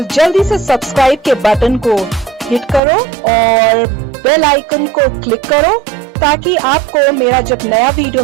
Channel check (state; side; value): drops out; left; at 2.8 s